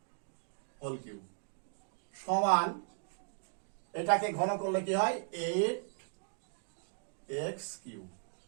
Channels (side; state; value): left; silent; digital silence